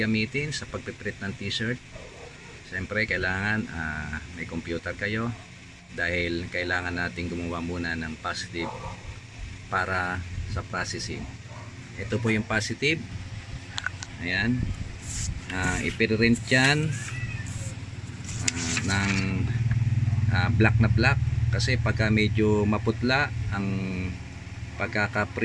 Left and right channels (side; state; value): both; identical; correlation 1.00